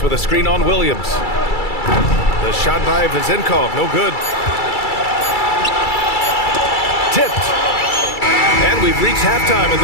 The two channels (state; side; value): late; right; 2.3 ms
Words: with a screen on Williams. The shot by Vezenkov, no good. Tipped. And we've reached halftime in